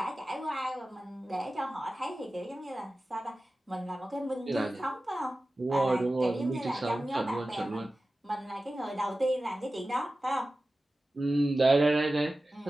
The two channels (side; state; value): both; normal; correlation 0.95